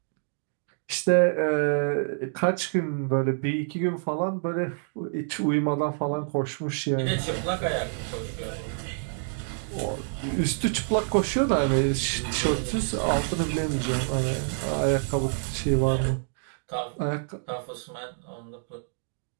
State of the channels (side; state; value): left; silent; digital silence